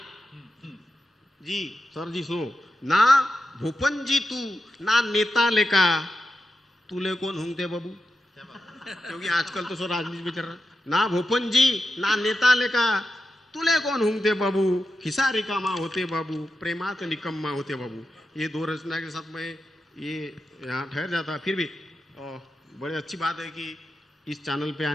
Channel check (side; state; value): both; normal; correlation 0.89